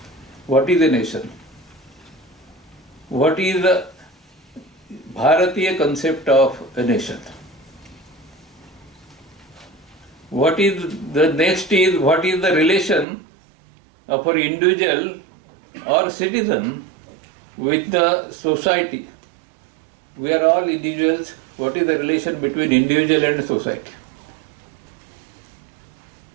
What is a nation? What is the Bharatiya concept of a nation? What is the next is, what is the relation of an individual or citizen with the society? We are all individuals. What is the relation between individual and society?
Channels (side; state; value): left; drops out; at 13.1 s